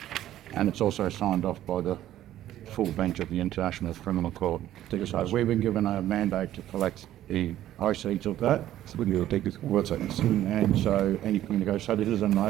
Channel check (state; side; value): quieter; left; 12.9 dB